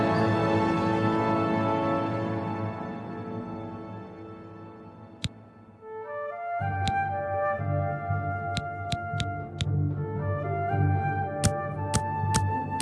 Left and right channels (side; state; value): both; identical; correlation 1.00